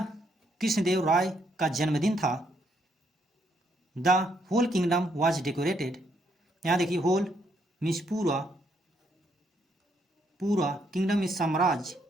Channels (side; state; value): both; normal; correlation 0.73